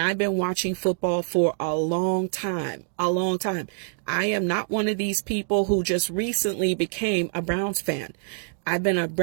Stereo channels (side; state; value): left; silent; digital silence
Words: been watching football for a long time. I am not one of these people who just recently became a Browns fan. I've been a